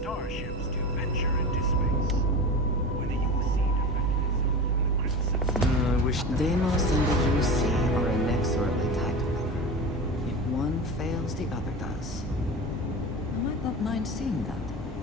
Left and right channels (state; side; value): normal; both; correlation 0.29